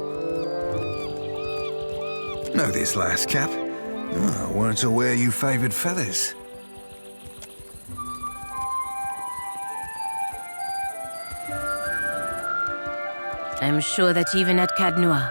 Know this last Cap? Oh, I weren't aware you favored feathers. I'm sure that even at Cadnois,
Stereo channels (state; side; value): inverted; both; correlation -1.00